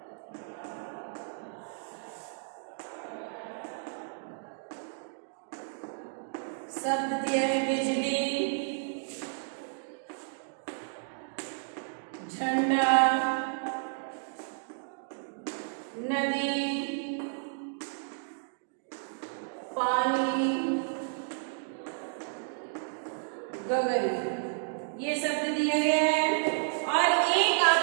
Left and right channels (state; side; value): silent; left; digital silence